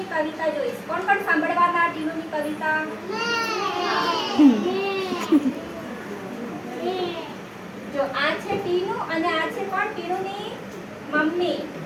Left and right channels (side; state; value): both; identical; correlation 1.00